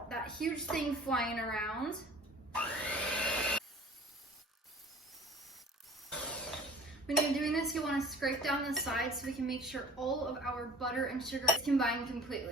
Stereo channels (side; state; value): both; normal; correlation 0.46